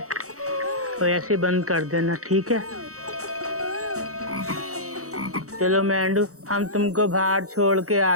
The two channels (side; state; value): left; late; 0.65 ms